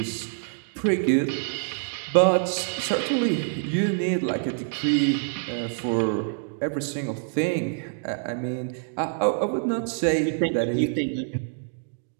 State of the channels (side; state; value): left; silent; digital silence